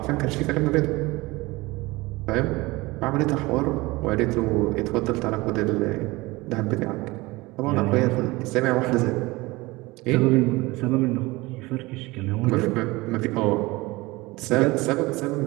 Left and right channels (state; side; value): quieter; left; 21.9 dB